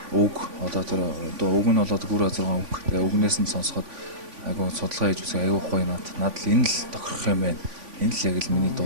үг одоо тэр үг нь болоод гүр 6 үг. Тэгээ үгнээс нь сонсоход айгүй судалгаа хийж үзэх айгүй гоё надад л энэ л тохирох юм байна. Энэ л яг л миний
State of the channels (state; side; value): late; left; 3.5 ms